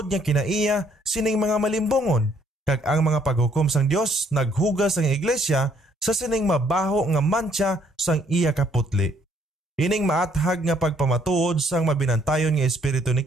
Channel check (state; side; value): normal; both; correlation 0.66